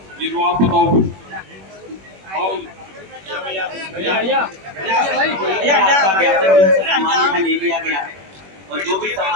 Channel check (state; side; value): late; left; 21 ms